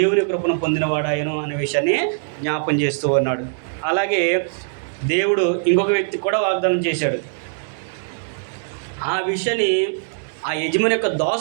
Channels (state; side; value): silent; left; 65 dB below the other